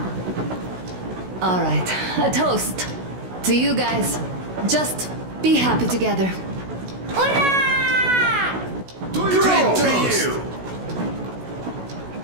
Alright, a toast. To you guys. Just be happy together. Hurrah! Great toast!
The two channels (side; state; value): left; late; 16 ms